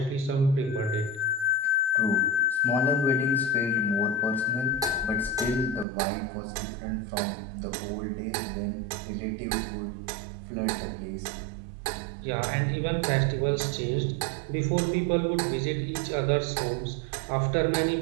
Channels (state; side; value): drops out; left; at 5.9 s